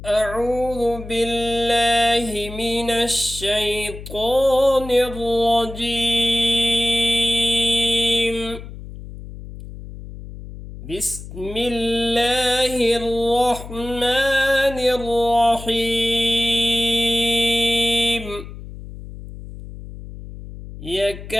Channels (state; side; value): noise; left; hum, 13 dB below the sound